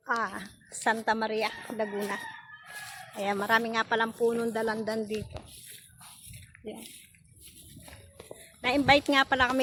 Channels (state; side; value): identical; both; correlation 1.00